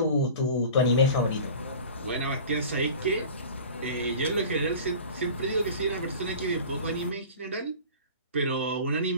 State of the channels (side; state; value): both; inverted; correlation -0.39